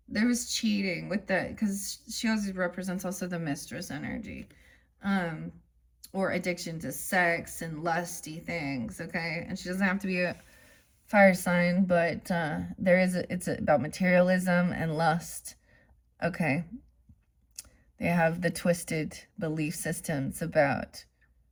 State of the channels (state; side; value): identical; both; correlation 1.00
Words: There was cheating with that, because she always represents also the mistress energy, or addiction to sex and lusty things, okay? And she doesn't have to be a fire sign, but it's about materialism and lust, okay? They have the twisted belief systems about